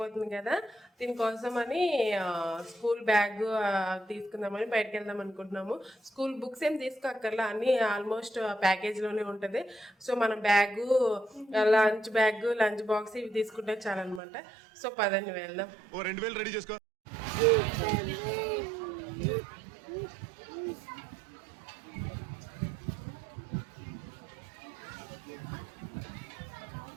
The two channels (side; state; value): left; drops out; at 14.2 s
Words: కదా, దీనికోసం అని స్కూల్ బ్యాగ్ తీసుకుందామని బయటకు వెళ్దాం అనుకుంటున్నాము. స్కూల్ బుక్స్ ఏం తీసుకోక్కర్లా, అన్నీ ఆల్మోస్ట్ ప్యాకేజ్లోనే ఉంటుంది. సో మనం బ్యాగు, లంచ్ బాక్స్ ఇవి తీసుకుంటే చాలన్నమాట. సో పదండి వెళ్దాం. 2000 రెడీ చేసుకో.